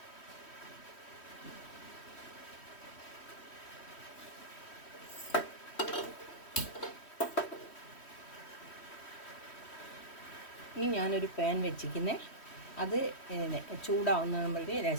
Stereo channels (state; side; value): late; right; 3.1 ms